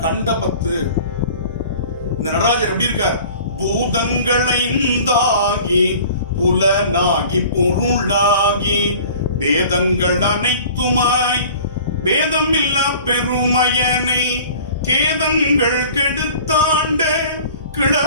கண்ட 10. இந்த நடராஜர் எப்படி இருக்கார்? பூதங்களைந்தாகி புலனாகி பொருளாகி வேதங்கள் அனைத்துமாய் வேதம் இல்லா பெருமையனை கேதங்கள் கெடுத்தாண்ட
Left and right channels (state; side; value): inverted; both; correlation -0.45